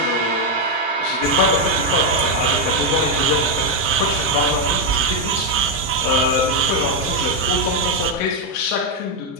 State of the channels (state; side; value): normal; both; correlation 0.02